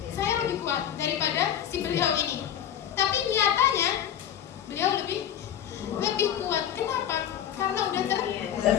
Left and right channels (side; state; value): right; quieter; 10.1 dB